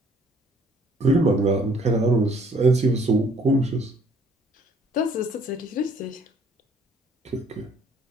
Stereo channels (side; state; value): both; normal; correlation 0.60